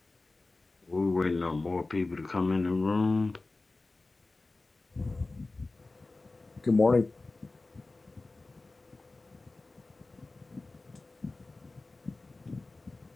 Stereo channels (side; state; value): right; quieter; 3.3 dB